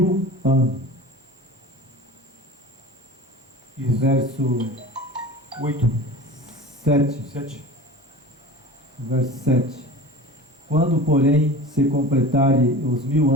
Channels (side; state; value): both; normal; correlation 0.35